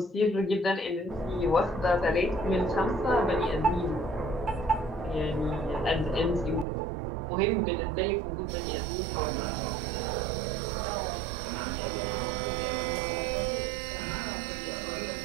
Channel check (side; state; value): left; drops out; at 6.7 s